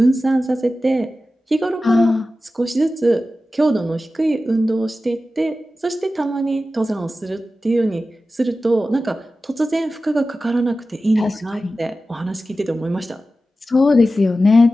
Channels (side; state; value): both; normal; correlation 0.94